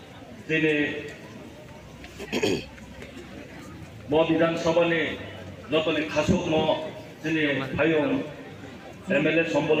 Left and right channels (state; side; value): identical; both; correlation 1.00